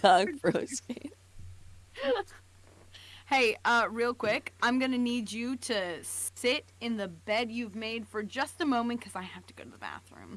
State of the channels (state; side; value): identical; both; correlation 1.00